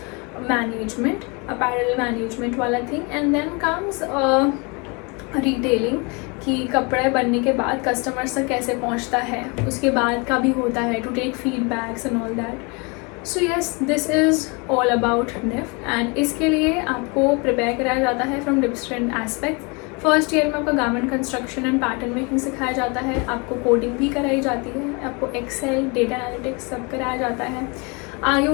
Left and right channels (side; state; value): right; quieter; 30.5 dB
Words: management, apparel management वाला thing. And then comes retailing कि कपड़े बनने के बाद कस्टमर्स तक कैसे पहुंचता है, उसके बाद का भी होता है to take feedbacks and all that. So yes, this is all about NIFT and इसके लिए आपको प्रिपेयर कराया जाता है from different aspects. First year में आपका garment construction and pattern making सिखाया जाता है, आपको कोडिंग भी कराई जाती है, आपको एक्सेल, डेटा एनालिटिक्स सब कराया जाता है,